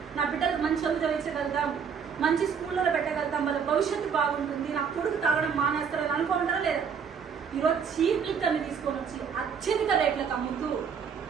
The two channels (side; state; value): left; quieter; 6.7 dB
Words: నా బిడ్డలకు మంచి చదువు చదివించగలుగుతాం, మంచి స్కూల్లో పెట్టగలుగుతాం, వాళ్ళ భవిష్యత్తు బాగుంటుంది, నా కొడుకు తాగడం మానేస్తారని అనుకుంటారా లేదా? ఈరోజు చీప్ లిక్కర్ ని తీసుకొని వచ్చి అత్యధిక రేట్లకు అమ్ముతూ